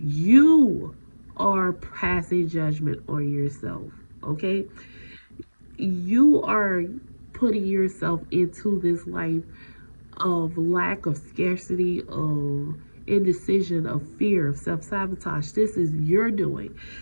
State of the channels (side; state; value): both; inverted; correlation -1.00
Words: you are passing judgment on yourself, okay? You are putting yourself into this life of lack, of scarcity, of indecision, of fear, of self sabotage. This is your doing,